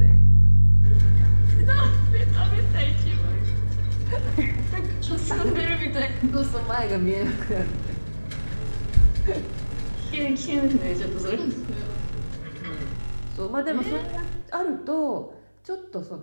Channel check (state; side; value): inverted; both; correlation -1.00